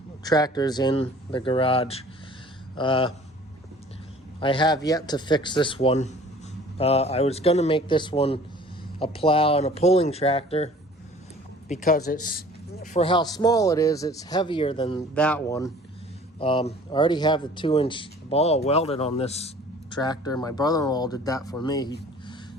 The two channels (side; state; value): both; normal; correlation 0.49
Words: tractors in the garage. I have yet to fix this one. I was going to make this one a plow and a pulling tractor because it's, for how small it is, it's heavier than that one. I already have the 2-inch ball welded on this tractor. My brother-in-law did that for me. He